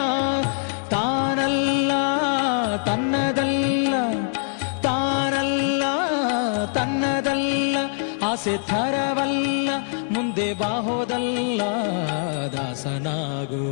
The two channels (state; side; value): silent; right; digital silence